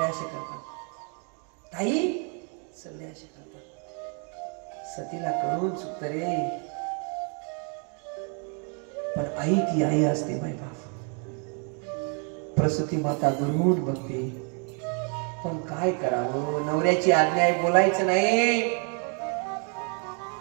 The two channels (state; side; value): quieter; left; 39.2 dB